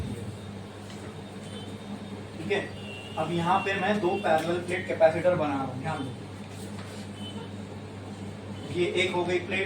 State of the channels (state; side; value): identical; both; correlation 1.00